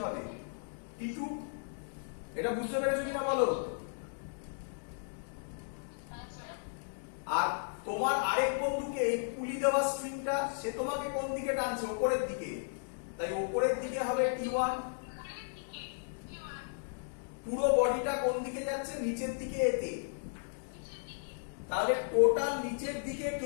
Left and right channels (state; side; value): silent; right; digital silence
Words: হবে? T2। এটা বুঝতে পেরেছো কিনা বলো? আর তোমার আরেক বন্ধুকে এই পুলি দেওয়া স্ট্রিংটা, সে তোমাকে কোন দিকে টানছে? উপরের দিকে। তাই উপরের দিকে হবে T1। পুরো বডিটা কোন দিকে যাচ্ছে? নিচের দিকে এতে। তাহলে টোটাল নিচের দিকে